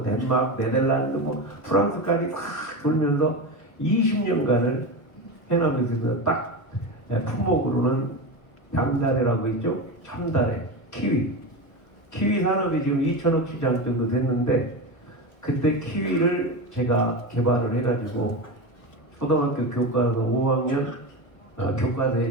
네덜란드, 뭐 프랑스까지 다 돌면서 20년간을 해남에서 딱 품목으로는 양다래라고 있죠. 참다래, 키위 산업이 지금 2천억 시장 정도 됐는데 그때 키위를 제가 개발을 해가지고 초등학교 교과서 5학년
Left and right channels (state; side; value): late; right; 1.1 ms